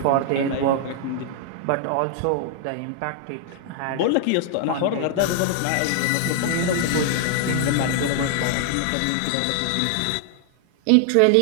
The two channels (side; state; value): both; different; correlation 0.00